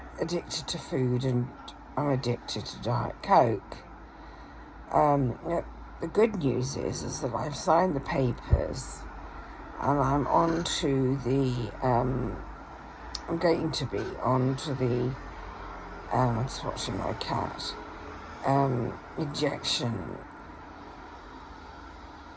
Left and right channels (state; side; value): identical; both; correlation 1.00